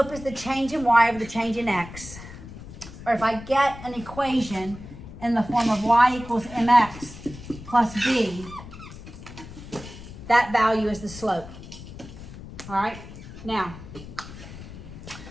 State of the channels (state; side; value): noise; left; rumble, 14 dB below the sound